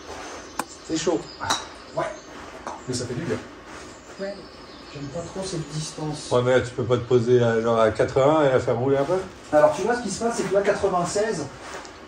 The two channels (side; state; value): both; identical; correlation 1.00